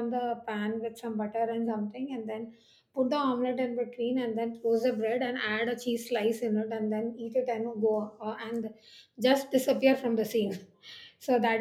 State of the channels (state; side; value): identical; both; correlation 1.00